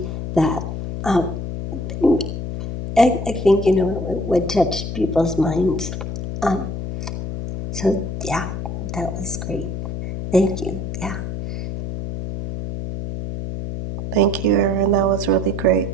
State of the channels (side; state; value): left; noise; hum, 5 dB below the sound